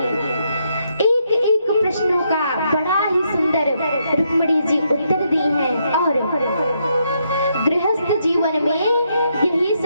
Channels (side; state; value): both; inverted; correlation -0.77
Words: एक एक प्रश्नों का बड़ा ही सुंदर रुक्मिणी जी उत्तर दी हैं। और गृहस्थ जीवन में यही